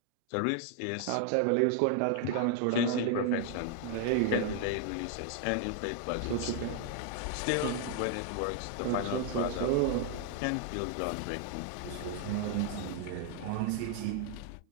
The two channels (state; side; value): different; both; correlation 0.00